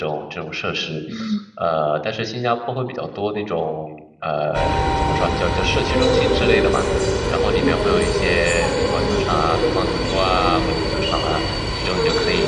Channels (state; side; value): identical; both; correlation 1.00